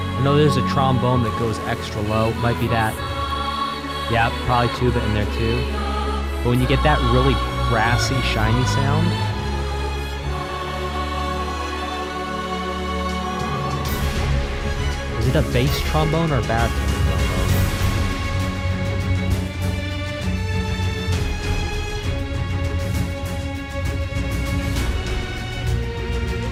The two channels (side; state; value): both; identical; correlation 1.00